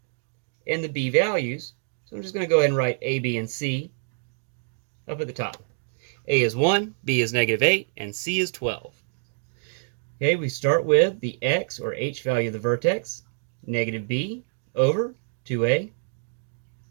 and the b values. So I'm just going to go ahead and write a, b, and c up at the top. A is 1, b is -8, and c is 12. Okay, we start with the x or h value of the vertex, -b over 2a.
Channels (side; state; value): left; silent; digital silence